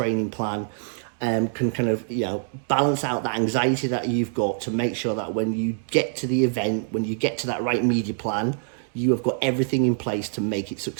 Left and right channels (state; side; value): silent; left; 62 dB below the other